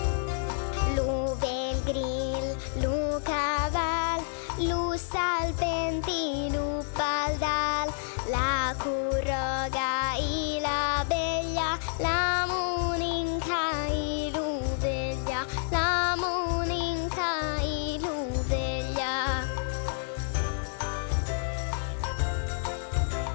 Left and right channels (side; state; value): right; silent; digital silence